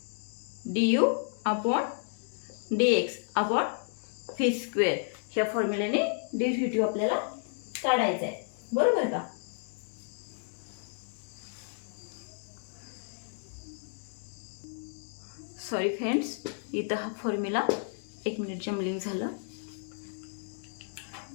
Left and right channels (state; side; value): silent; right; digital silence